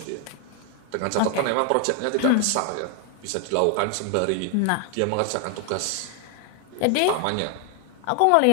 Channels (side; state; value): both; different; correlation 0.00